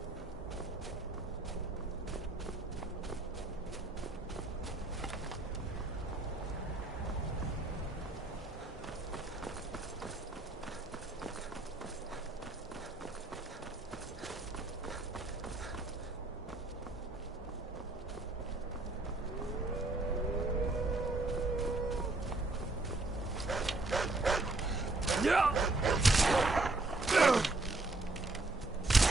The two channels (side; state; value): left; quieter; 3.0 dB